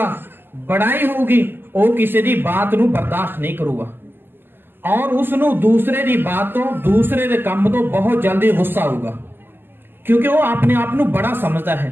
बड़ाई होगी, वो किसी दी बात नूं बर्दाश्त नहीं करूगा और उसनूं दूसरे दी बात तो दूसरे दे काम तो बहुत जल्दी गुस्सा होगा, क्योंकि वो अपने आप नूं बड़ा समझता है।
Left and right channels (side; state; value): left; late; 0.098 ms